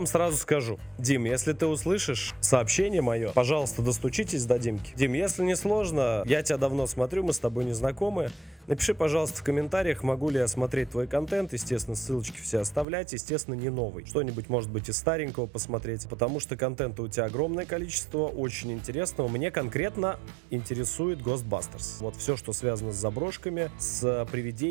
сразу скажу. Дим, если ты услышишь сообщение мое, пожалуйста, достучитесь до Димки. Дим, если не сложно, я тебя давно смотрю, мы с тобой не знакомы. Напиши, пожалуйста, в комментариях, могу ли я смотреть твой контент. Естественно, ссылочки все оставлять. Естественно, не новый. Что-нибудь, может быть, из старенького посмотреть. Потому что контента у тебя огромное количество, очень интересного. Мне конкретно интересует Ghostbusters. Вот все, что связано с заброшками, с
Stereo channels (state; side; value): drops out; left; at 12.9 s